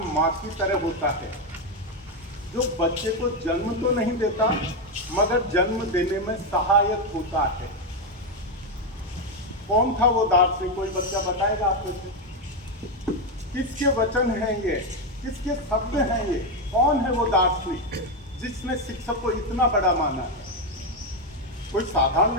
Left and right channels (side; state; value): both; normal; correlation 0.06